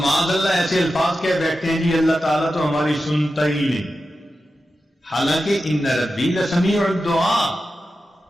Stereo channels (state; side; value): normal; both; correlation 0.91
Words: اللہ ایسے الفاظ کہہ بیٹھتے ہیں جی اللہ تعالیٰ تو ہماری سنتا ہی نہیں. حالانکہ ان ربی لسمیع الدعاء،